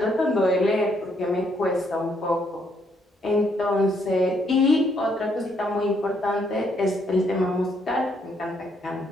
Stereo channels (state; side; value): normal; both; correlation 0.72